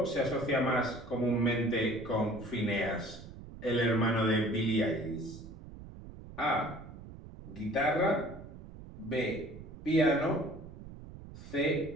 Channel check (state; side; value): noise; right; rumble, 15 dB below the sound